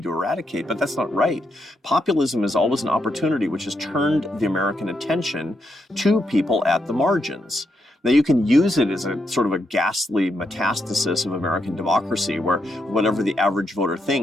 to eradicate, but that's not right. Populism is always an opportunity which has turned the American attention to people at the margins. Now, you can use it as a sort of a ghastly metastasis of American democracy where whatever the average voter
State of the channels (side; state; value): both; normal; correlation 0.80